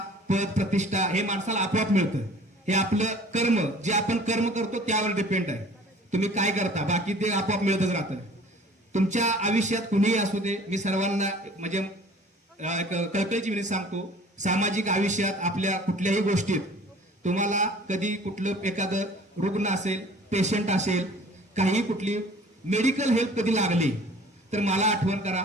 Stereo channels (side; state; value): both; normal; correlation 0.49